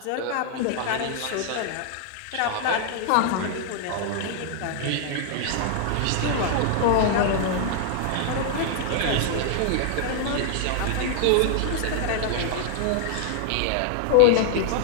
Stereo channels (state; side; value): different; both; correlation 0.00